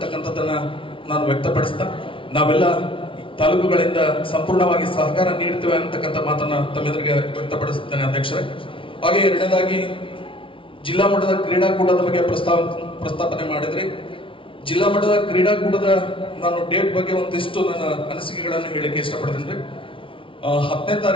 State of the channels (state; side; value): late; right; 0.25 ms